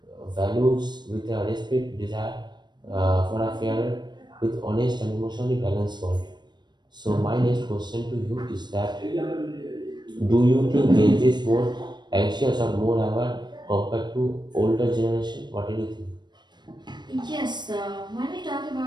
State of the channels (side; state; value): left; late; 0.21 ms